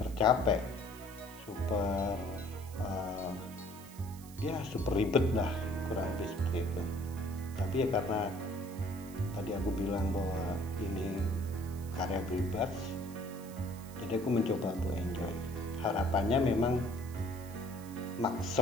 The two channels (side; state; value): right; noise; hiss, 19 dB below the sound